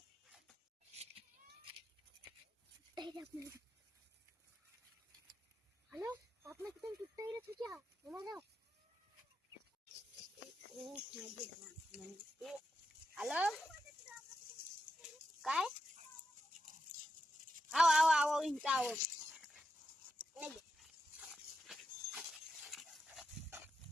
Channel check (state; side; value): normal; both; correlation 0.86